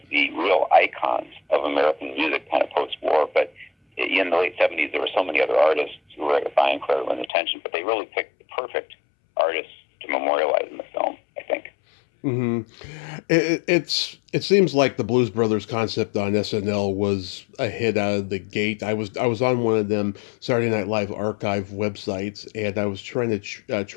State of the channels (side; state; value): right; drops out; at 7.3 s